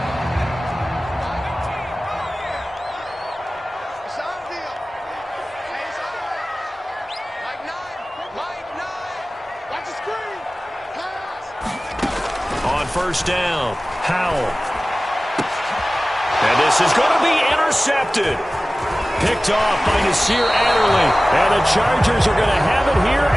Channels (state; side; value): normal; both; correlation 0.97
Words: First down, Howell. And this is going to be intercepted. Picked off by Nasir Adderley. And the Chargers are going to have it here